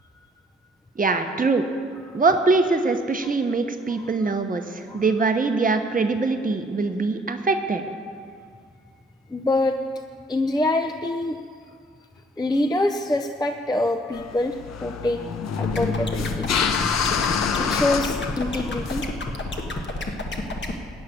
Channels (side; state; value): both; normal; correlation 0.60